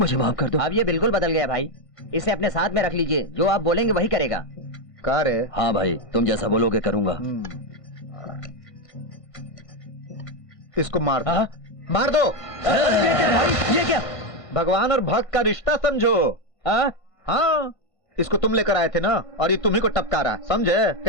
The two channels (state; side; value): late; right; 1.5 ms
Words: माफ कर दो। अब ये बिल्कुल बदल गया भाई, इसे अपने साथ में रख लीजिए, जो आप बोलेंगे वही करेगा। का रे? हाँ भाई, तुम जैसा बोलोगे करूंगा। इसको मार दो। मार दो। ये क्या भाई, ये क्या? भगवान और भक्त का रिश्ता समझो। हाँ, इसको तुम लेकर आए थे ना, और ये तुम्ही को टपका रहा, समझे?